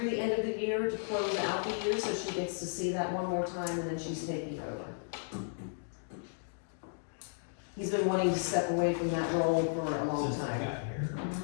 the end of the year to close out the year, so she gets to see that one more time, and then she's taking over. He's been wanting to step away from that role for a long Since I time. got here.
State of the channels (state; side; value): silent; right; digital silence